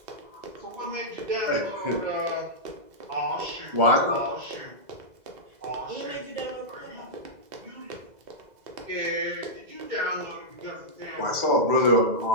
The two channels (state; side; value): late; left; 2.0 ms